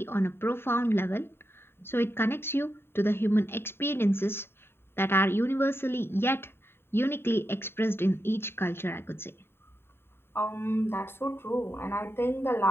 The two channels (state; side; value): late; right; 0.11 ms